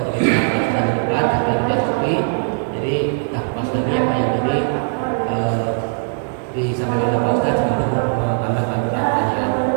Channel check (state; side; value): silent; left; digital silence